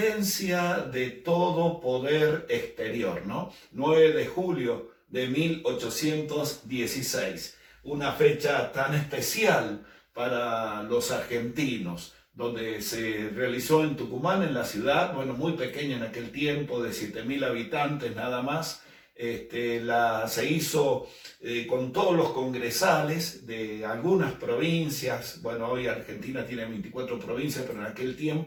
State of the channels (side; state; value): both; identical; correlation 1.00